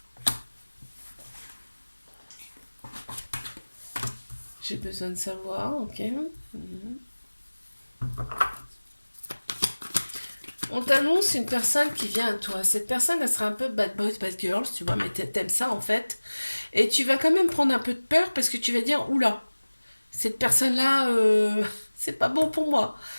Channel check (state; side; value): inverted; both; correlation -1.00